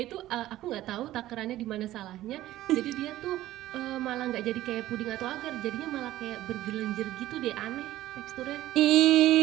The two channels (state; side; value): quieter; left; 14.8 dB